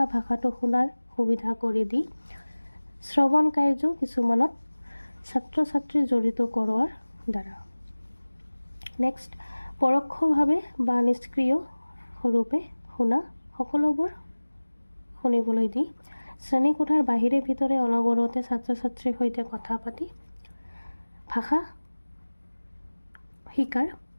ভাষাটো শুনাৰ সুবিধা কৰি দি শ্ৰৱণ কাৰ্য কিছুমানত ছাত্ৰ ছাত্ৰী জড়িত কৰোৱাৰ দ্বাৰা। নেক্সট, পৰোক্ষভাৱে বা নিষ্ক্ৰিয় ৰূপে শুনা সকলোবোৰ শুনিবলৈ দি শ্ৰেণীকোঠাৰ বাহিৰে ভিতৰে অনবৰতে ছাত্ৰ ছাত্ৰীৰ সৈতে কথা পাতি ভাষা শিকাৰ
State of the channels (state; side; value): inverted; both; correlation -1.00